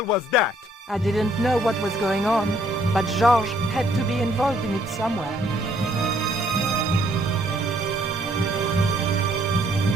was that? I didn't know what was going on, but Georges had to be involved in it somewhere.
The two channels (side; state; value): both; normal; correlation 0.66